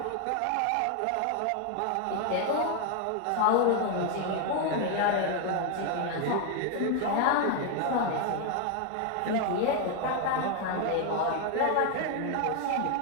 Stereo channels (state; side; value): different; both; correlation 0.01